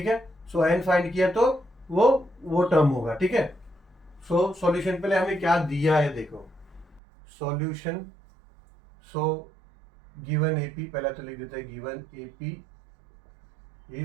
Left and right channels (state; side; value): drops out; left; at 7.0 s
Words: है। सो एन फाइंड किया तो वो टर्म होगा, ठीक है। सो सॉल्यूशन पहले हमें क्या दिया है देखो, सॉल्यूशन, सो गिवन एपी, पहला तो लिख देते हैं गिवन एपी